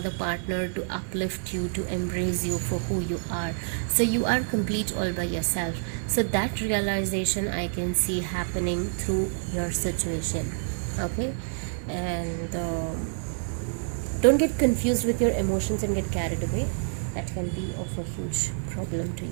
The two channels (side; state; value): left; silent; 57 dB below the other